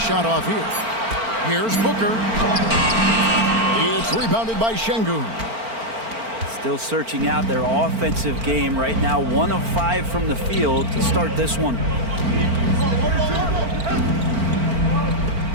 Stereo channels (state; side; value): late; left; 4.4 ms